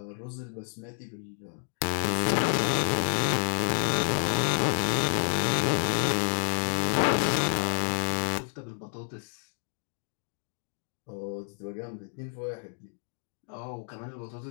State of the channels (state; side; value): silent; right; 57 dB below the other